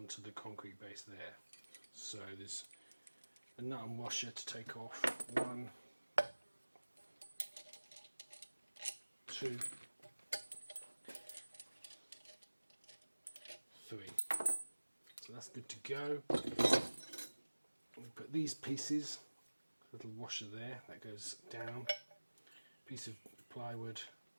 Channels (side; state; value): both; inverted; correlation -1.00